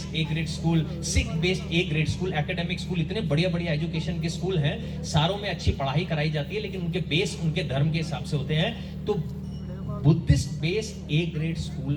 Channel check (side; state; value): both; identical; correlation 1.00